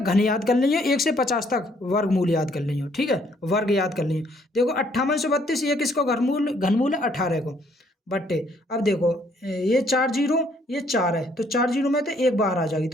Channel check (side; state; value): both; normal; correlation 0.66